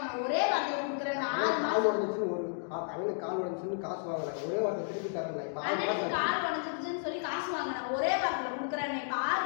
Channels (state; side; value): silent; right; digital silence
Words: ஒரே வார்த்தையில கொடுக்குறேன். கால் உடஞ்சிச்சுன்னு ஒரு அவனுக்கு கால் உடஞ்சிச்சுன்னு காசு வாங்கல, ஒரே வார்த்தை திருப்பி தரல. இப்ப அண்ணனுக்கு கால் உடஞ்சிச்சுன்னு சொல்லி காசு வாங்கினேன், ஒரே வார்த்தையில கொடுக்குறேன். இப்ப 6